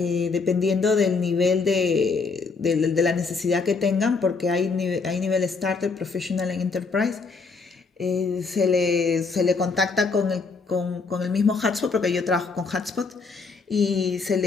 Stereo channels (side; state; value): right; quieter; 4.5 dB